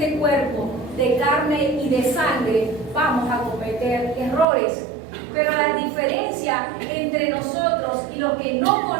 cuerpo de carne y de sangre, vamos a cometer errores. Pero la diferencia entre nosotros y los que no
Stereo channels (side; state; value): left; drops out; at 4.5 s